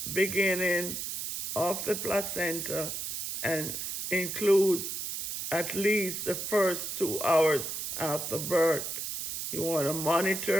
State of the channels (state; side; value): noise; right; hiss, 4 dB below the sound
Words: beginning of the placenta and includes at least the first 2 hours after birth. You want to